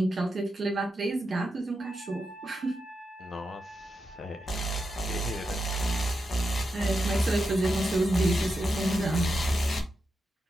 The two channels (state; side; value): normal; both; correlation 0.87